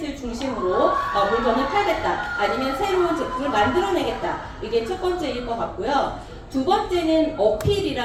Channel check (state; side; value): identical; both; correlation 1.00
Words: 중심으로 물건을 팔겠다. 아니면 새로운 제품을 만들어내겠다. 이게 첫 번째일 것 같고요. 두 번째는